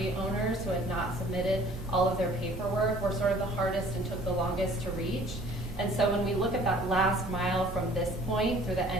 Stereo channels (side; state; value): both; normal; correlation 0.53